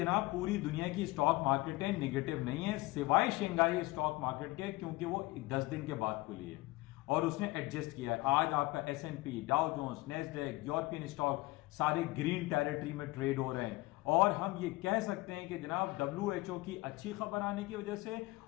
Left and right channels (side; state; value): right; quieter; 21.2 dB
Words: पूरी दुनिया की स्टॉक मार्केटें निगेटिव नहीं है सिवाय शंघाई स्टॉक मार्केट के, क्योंकि वो 10 दिन के बाद खुली है और उसने एडजस्ट किया है। आज आपका S&P, Dow Jones, Nasdaq, European stock सारे ग्रीन टेरिटरी में ट्रेड हो रहे हैं। और हम ये कह सकते हैं कि जनाब WHO की अच्छी खबर आने की वजह से